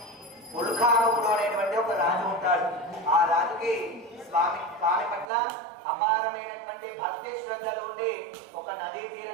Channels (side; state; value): left; drops out; at 5.2 s